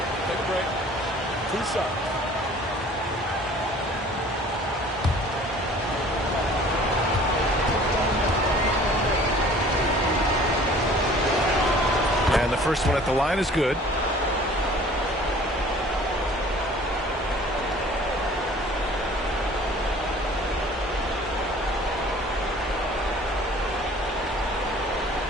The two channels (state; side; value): normal; both; correlation 0.49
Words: Take a break. 2 shots. And the first one at the line is good.